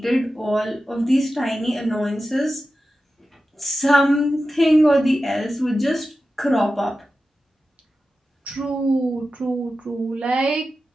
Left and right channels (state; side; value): normal; both; correlation 0.93